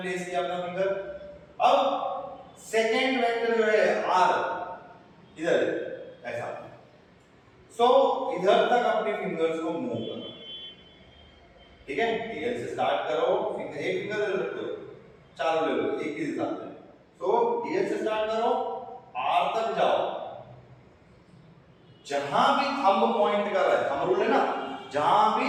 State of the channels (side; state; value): both; identical; correlation 1.00